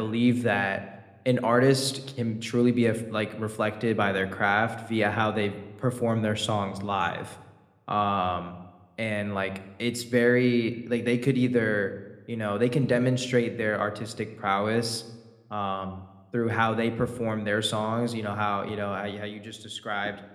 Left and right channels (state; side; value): identical; both; correlation 1.00